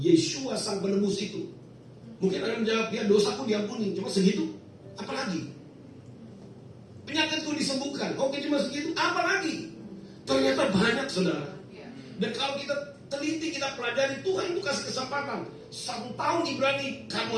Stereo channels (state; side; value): identical; both; correlation 1.00